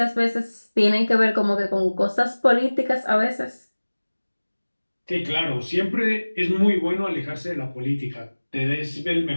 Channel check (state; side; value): inverted; both; correlation -1.00